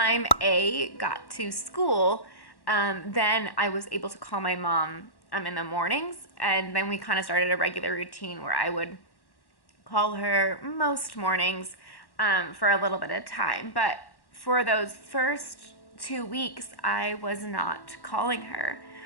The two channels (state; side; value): late; right; 1.1 ms